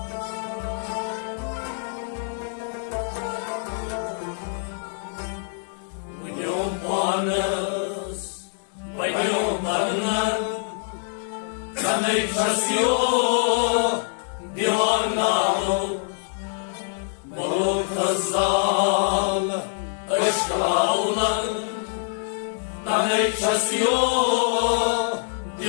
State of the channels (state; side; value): silent; right; digital silence